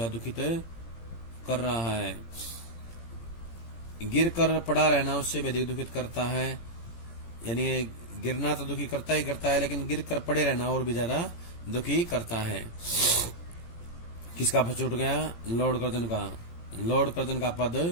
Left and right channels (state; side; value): late; right; 18 ms